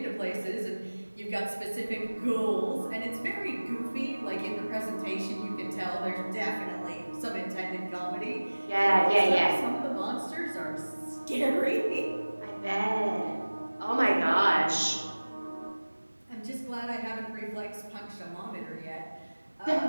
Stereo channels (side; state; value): both; inverted; correlation -1.00